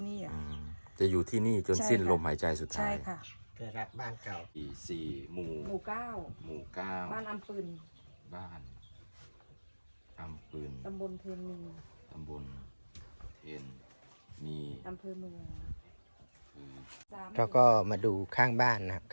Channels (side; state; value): both; inverted; correlation -1.00